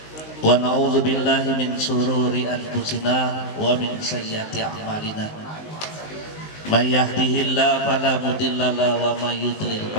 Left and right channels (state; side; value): late; right; 19 ms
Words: wa na'udzu billahi min shururi anfusina wa min sayyiati a'malina. May yahdihillahu fala mudilla lahu wa may yudlil